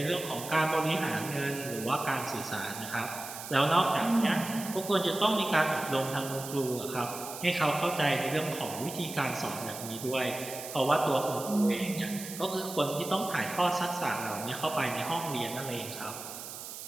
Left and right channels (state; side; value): noise; right; hiss, 10 dB below the sound